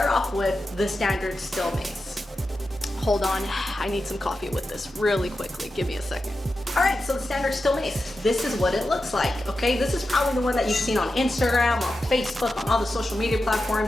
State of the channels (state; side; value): normal; both; correlation 0.91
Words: off with the standard steel mace. Hold on, I need some coffee with this really quickly. Give me a second. All right, so the standard steel mace, this is what it looks like, okay? This is probably the one that you've seen on Instagram, on Facebook, on all the social media